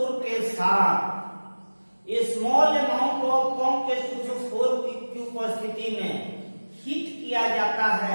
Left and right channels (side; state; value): both; inverted; correlation -1.00